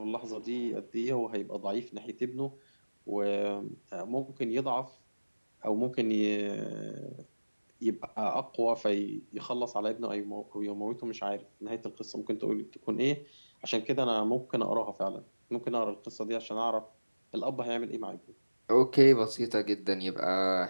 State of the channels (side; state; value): both; inverted; correlation -1.00